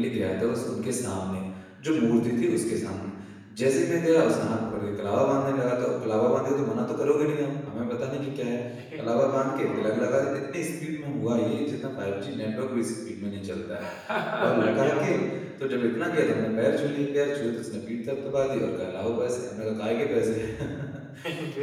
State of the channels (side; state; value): both; identical; correlation 1.00